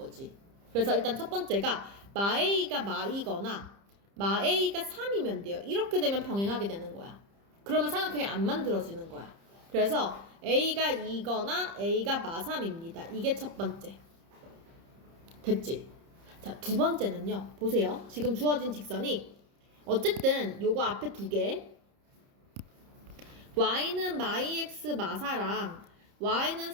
그래서 일단 첫 번째가 마에이가 마이거나 마에이가 3이면 돼요. 이렇게 되면 평행하게 되는 거야. 그러면 삼각형이 안 만들어지는 거야. 그래서 A가 2거나 A가 마3입니다. 이게 첫 번째. 됐지? 자, 두 번째는요. 보세요. 지금 주어진 직선이 어쨌든 요거 앞에 두 개 y는 마이x 마4랑 y는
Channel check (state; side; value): late; left; 30 ms